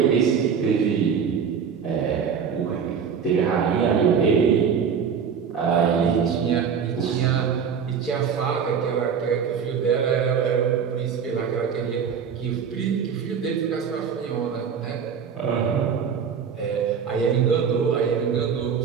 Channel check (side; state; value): left; quieter; 6.9 dB